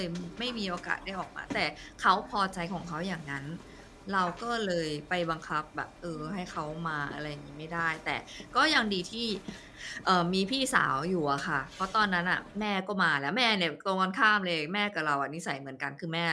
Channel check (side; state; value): both; identical; correlation 1.00